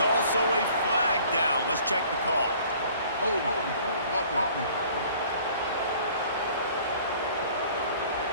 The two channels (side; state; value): both; inverted; correlation -0.53